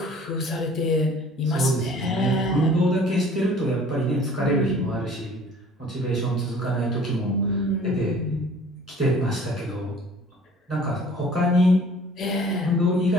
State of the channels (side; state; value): both; normal; correlation 0.51